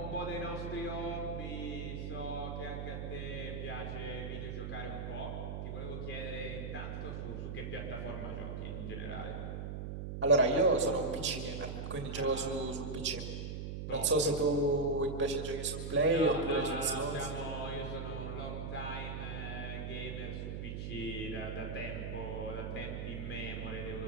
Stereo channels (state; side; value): noise; right; hum, 4 dB below the sound